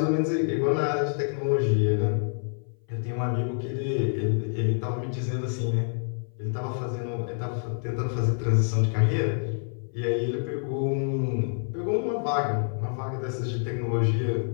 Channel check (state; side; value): silent; right; 57 dB below the other